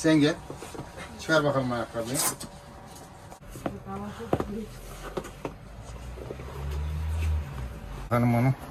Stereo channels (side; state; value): both; identical; correlation 1.00